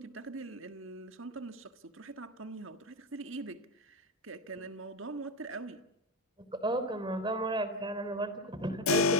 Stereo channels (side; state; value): both; normal; correlation 0.13